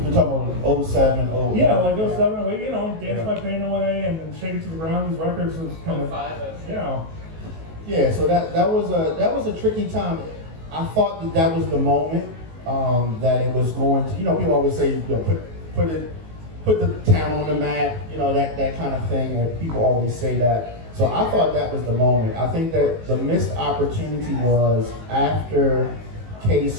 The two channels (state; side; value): late; left; 19 ms